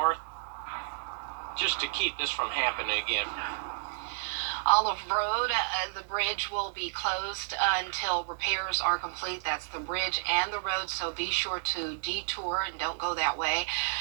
just to keep this from happening again. Olive Road, the bridge will be closed until repairs are complete. That's the bridge and the road, so be sure to detour and don't go that way.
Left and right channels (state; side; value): silent; left; digital silence